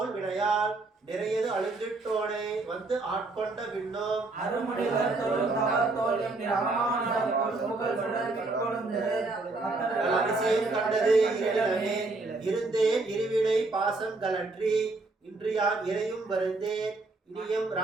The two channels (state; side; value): quieter; left; 3.3 dB